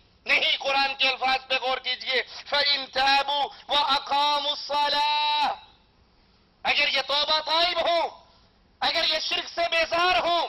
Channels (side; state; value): both; identical; correlation 1.00